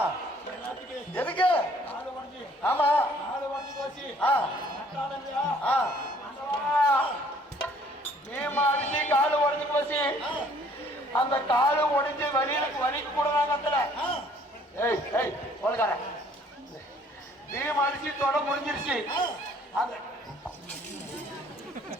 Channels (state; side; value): normal; both; correlation 0.59